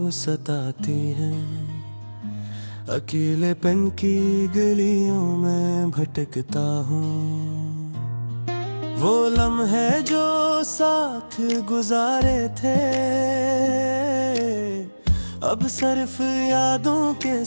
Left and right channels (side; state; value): both; inverted; correlation -1.00